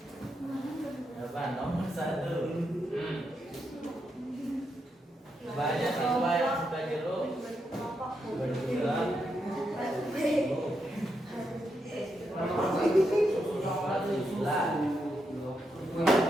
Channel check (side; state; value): both; normal; correlation 0.83